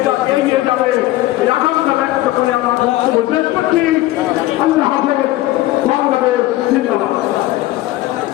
এগিয়ে যাবে এই আকাঙ্ক্ষা ব্যক্ত করে আমার বক্তব্য শেষ করছি। আল্লাহ হাফেজ। বাংলাদেশ জিন্দাবাদ।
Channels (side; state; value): right; quieter; 16.7 dB